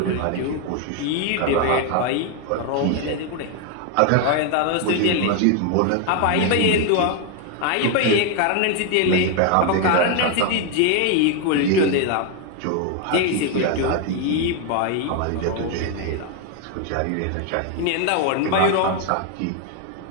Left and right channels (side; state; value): both; different; correlation 0.01